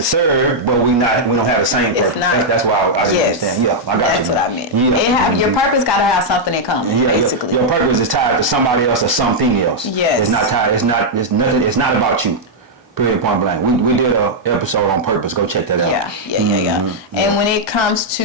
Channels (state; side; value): normal; both; correlation -0.04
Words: but we don't have the same purpose. That's why I didn't understand. Yeah, I got That's you. That's what I meant. Yeah. Your purpose got to have something in common. Yeah, basically. Your purpose is tied to somebody else or something else. Yes. It's not tied. It's nothing. It's not about you. Period. Point blank. We did an episode on purpose. Go check that out. Yeah. And when it comes